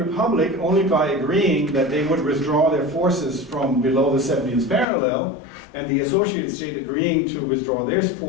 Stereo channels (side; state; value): right; drops out; at 4.9 s